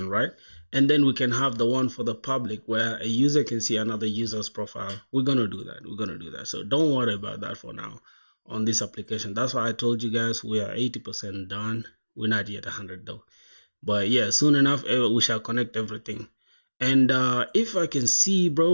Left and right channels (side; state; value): both; inverted; correlation -1.00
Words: right? and then we can have the one for the public where a user can see another user's profile. We're gonna do that. So don't worry about that for now on this application. That's why I told you guys we are 80% done. We're not yet 100 though, but yeah, soon enough we shall connect everything. And if I can see,